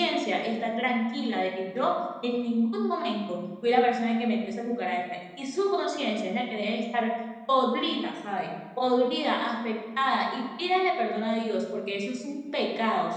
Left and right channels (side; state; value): both; identical; correlation 1.00